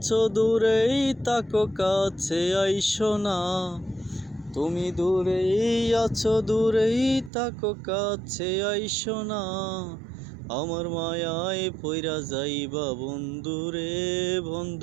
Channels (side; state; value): left; drops out; at 7.3 s